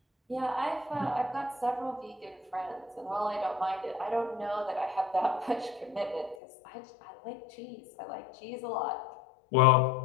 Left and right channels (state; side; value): drops out; right; at 6.4 s